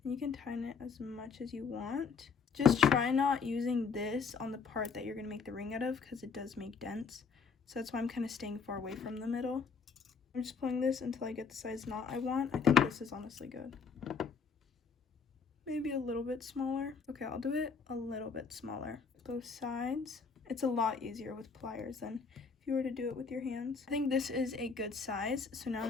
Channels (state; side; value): quieter; right; 5.5 dB